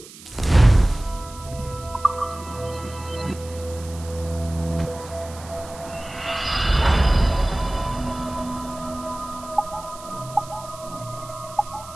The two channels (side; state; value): right; noise; hiss, 18 dB below the sound